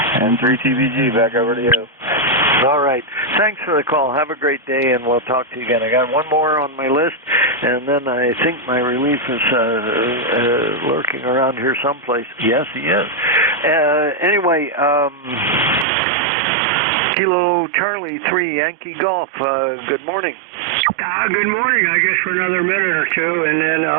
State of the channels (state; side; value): drops out; left; at 15.9 s